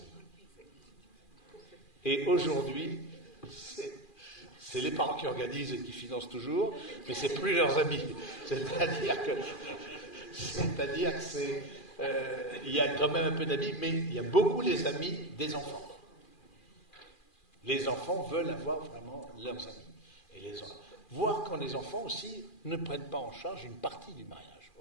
Et aujourd'hui, c'est les parents qui organisent et qui financent toujours, mais c'est plus leurs amis. C'est-à-dire que c'est... il y a quand même un peu d'amis, mais il y a beaucoup les amis des enfants. Les enfants veulent avoir vraiment leurs amis. Et voir quand les enfants aussi ne prennent pas en charge une partie du mariage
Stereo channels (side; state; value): right; late; 2.4 ms